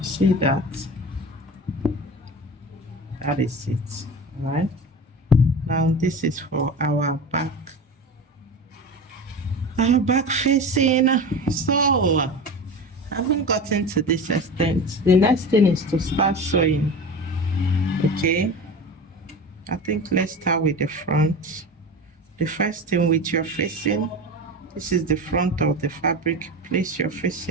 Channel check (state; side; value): normal; both; correlation 0.30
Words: See that? That is it. All right. Now this is for our back. Our back facing. So having gotten to this extent, the next thing is to start sewing. Okay. I think let's start with the front. The first thing with your facing, this is the front of the fabric. Place your